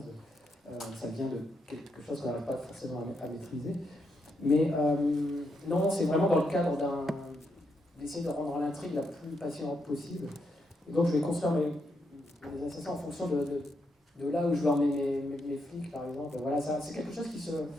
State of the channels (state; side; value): normal; both; correlation 0.81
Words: ça vient de quelque chose qu'on n'arrive pas forcément à maîtriser. Mais non, c'est vraiment dans le cadre d'essayer de rendre l'intrigue la plus passionnante possible. Et donc je vais construire mes assassins en fonction de là où je veux emmener mes flics, par exemple. Voilà, c'est quelque chose